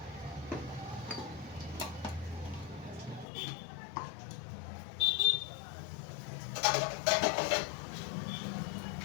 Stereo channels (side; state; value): right; drops out; at 3.2 s